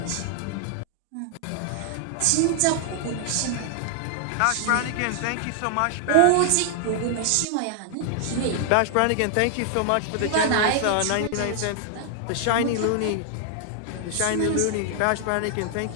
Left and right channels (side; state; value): both; different; correlation 0.00